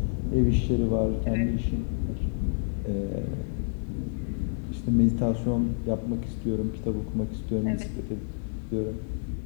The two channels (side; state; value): right; silent; 59 dB below the other